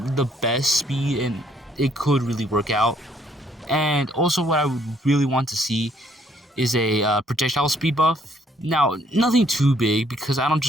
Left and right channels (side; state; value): both; normal; correlation 0.66